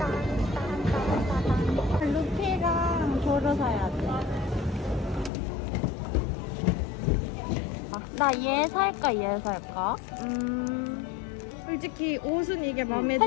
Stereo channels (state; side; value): drops out; right; at 5.3 s